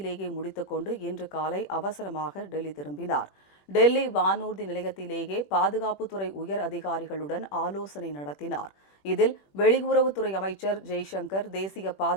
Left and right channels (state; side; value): late; right; 21 ms